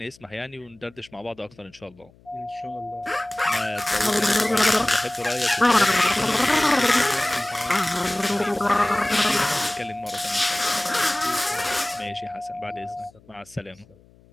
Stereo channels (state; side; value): noise; left; hum, 28 dB below the sound